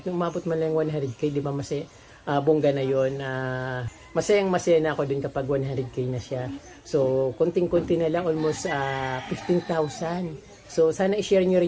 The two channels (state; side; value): identical; both; correlation 1.00